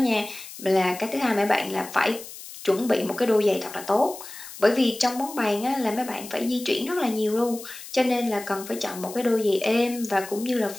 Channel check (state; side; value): noise; left; hiss, 14 dB below the sound